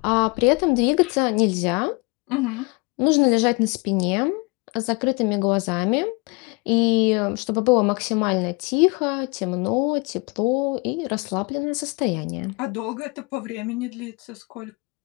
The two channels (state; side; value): quieter; right; 28.6 dB